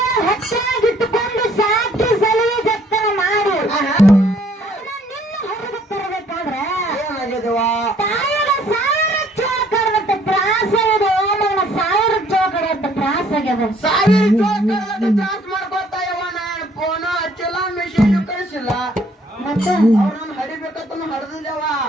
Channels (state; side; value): normal; both; correlation 0.62